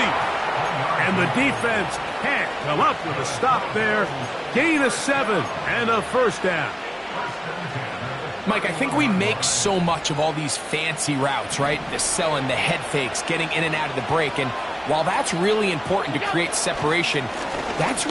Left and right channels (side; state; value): both; identical; correlation 1.00